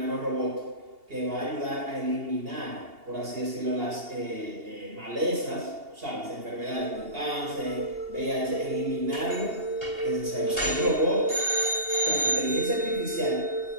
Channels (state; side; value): late; left; 2.8 ms